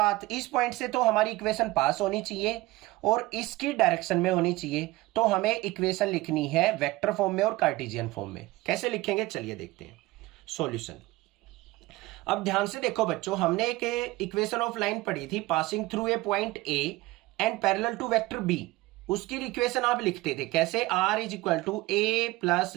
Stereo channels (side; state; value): left; quieter; 19.6 dB